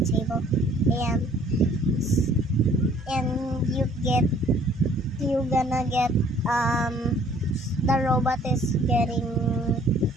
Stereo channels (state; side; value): normal; both; correlation 0.58